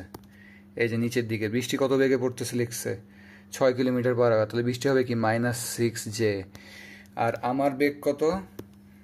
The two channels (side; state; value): both; identical; correlation 1.00